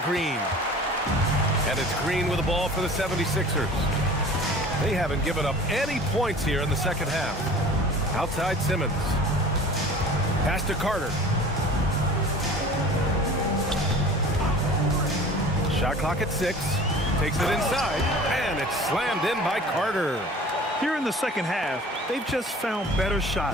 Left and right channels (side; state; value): both; normal; correlation 0.43